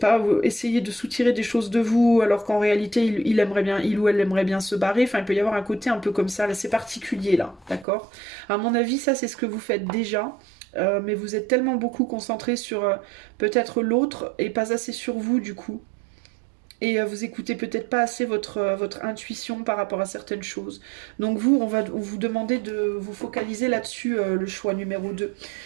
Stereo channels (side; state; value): left; drops out; at 7.9 s